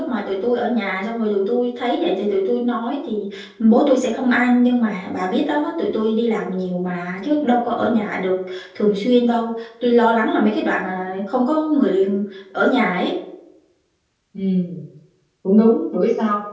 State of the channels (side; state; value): both; identical; correlation 1.00